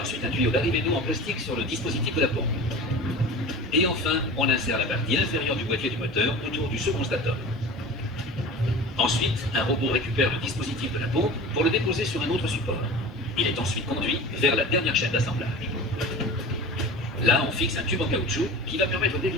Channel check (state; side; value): normal; both; correlation 0.35